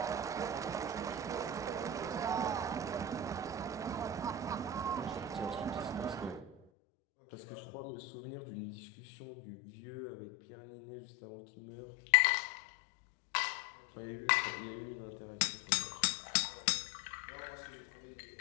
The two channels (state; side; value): drops out; right; at 6.6 s